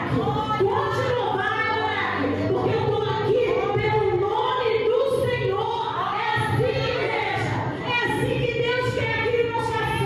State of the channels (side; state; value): both; identical; correlation 1.00